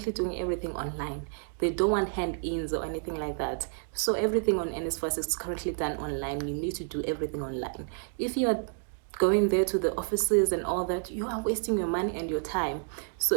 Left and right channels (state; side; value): silent; left; 58 dB below the other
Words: doing everything online. They don't want hand-ins or anything like that. So everything on Nsfas is currently done online. You need to do everything online. If you are going there to the offices and all that, you are wasting your money and your time. So